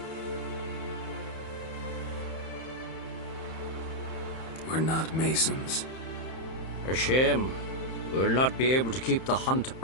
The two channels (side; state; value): right; late; 31 ms